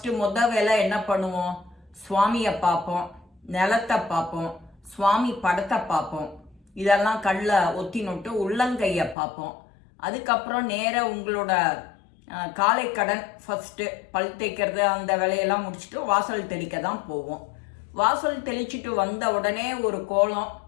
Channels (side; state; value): right; drops out; at 9.2 s